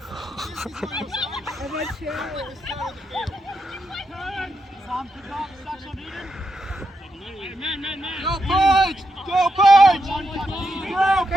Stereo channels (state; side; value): normal; both; correlation 0.83